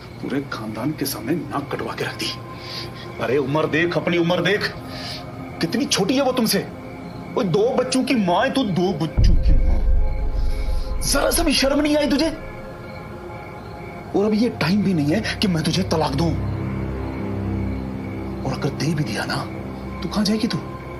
पूरे खानदान के सामने नाक कटवा के रख दी। अरे उम्र देख, अपनी उम्र देख, कितनी छोटी है वो तुमसे। वो 2 बच्चों की मां है, तू 2 बच्चों की मां। जरा सा भी शर्म नहीं आई तुझे? और अभी ये टाइम भी नहीं है कि मैं तुझे तलाक दूं। और अगर दे भी दिया ना, तो कहां जाएगी तू?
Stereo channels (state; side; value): identical; both; correlation 1.00